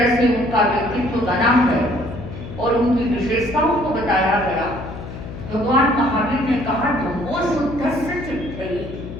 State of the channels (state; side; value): noise; left; hum, 11 dB below the sound